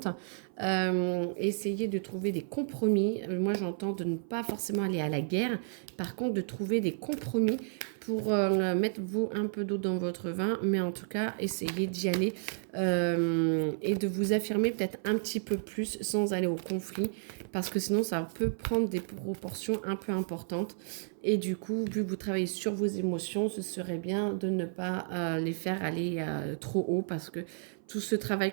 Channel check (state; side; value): silent; left; 56 dB below the other